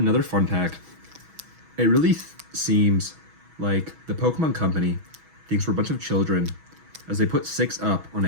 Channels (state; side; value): late; left; 6.2 ms